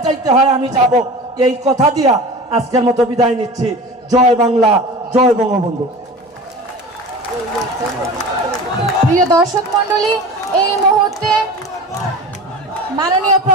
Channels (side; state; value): both; normal; correlation 0.35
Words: যাইতে হয় আমি যাব। এই কথা দিয়া আজকের মতো বিদায় নিচ্ছি। জয় বাংলা, জয় বঙ্গবন্ধু। প্রিয় দর্শক মন্ডলী, এই মুহূর্তে মাননীয়